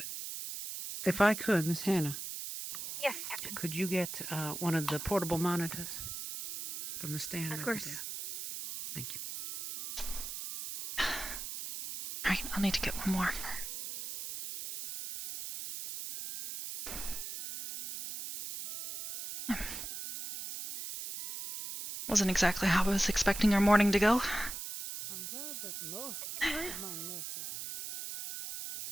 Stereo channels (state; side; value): noise; right; hiss, 7 dB below the sound